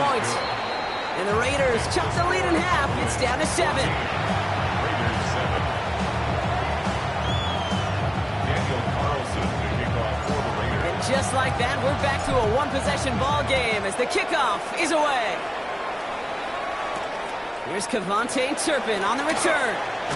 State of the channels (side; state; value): both; identical; correlation 1.00